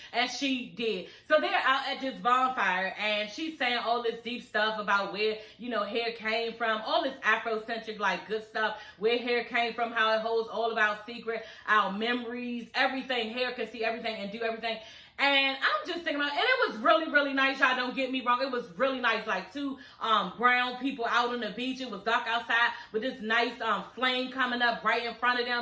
And she did. So they're out at this bonfire, and she's saying all this deep stuff about where, you know, hair came from, all this Afrocentric, like, good stuff, where hair came from, how it holds all of our secret, our memories, everything. Hair can see everything and do everything. And I'm just thinking about, and it was really, really nice. Y'all don't get me wrong. It was really nice. Like two brown people out on the beach. It was dark outside with this nice flame coming up right in front of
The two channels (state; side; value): identical; both; correlation 1.00